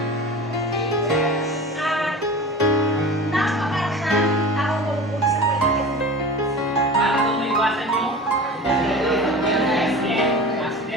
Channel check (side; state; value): both; normal; correlation 0.35